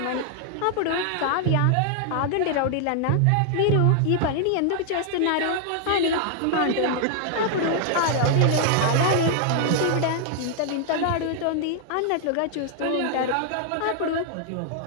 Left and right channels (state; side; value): different; both; correlation 0.00